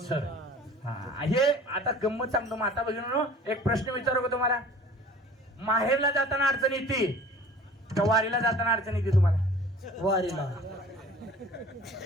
हे आता गंमत सांगतो. माता भगिनींनो, एक प्रश्न विचारू का तुम्हाला? माहेरला जाताना अडचण येते का वारीला जाताना अडचण येते तुम्हाला? वारीला.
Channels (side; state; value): both; normal; correlation 0.46